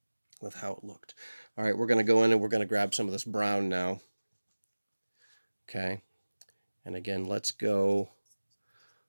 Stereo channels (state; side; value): inverted; both; correlation -1.00